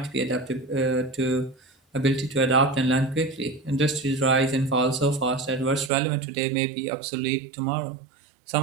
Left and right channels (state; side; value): drops out; left; at 5.9 s